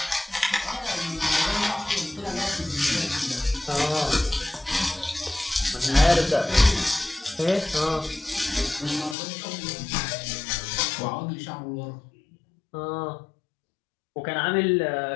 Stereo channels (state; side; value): drops out; right; at 9.2 s